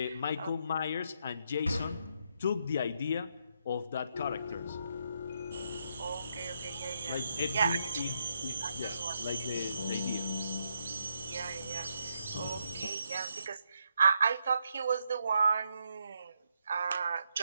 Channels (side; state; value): both; inverted; correlation -0.79